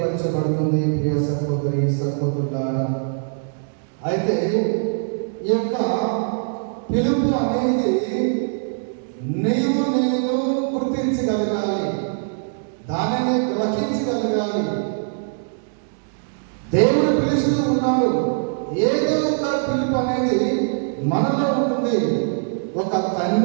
ప్రియ సహోదరి సహోదరులారా, అయితే ఈ యొక్క పిలుపు అనేది నేను గుర్తించగలగాలి, దానిని గ్రహించగలగాలి. దేవుడు పిలుస్తూ ఉన్నాడు. ఏదో ఒక పిలుపు అనేది మనలో ఉంటుంది. ఒక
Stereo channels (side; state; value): left; silent; digital silence